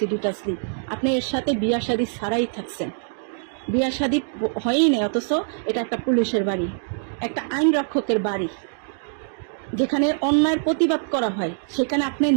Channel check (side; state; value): left; silent; digital silence